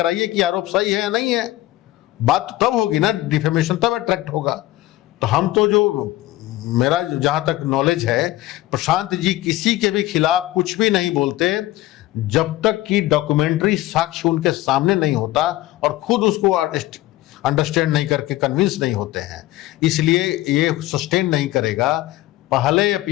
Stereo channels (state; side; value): quieter; right; 16.6 dB